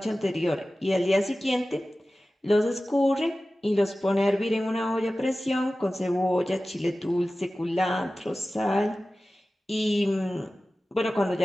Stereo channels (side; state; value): both; normal; correlation 0.96